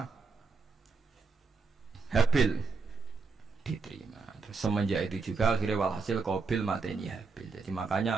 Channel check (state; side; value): quieter; left; 4.5 dB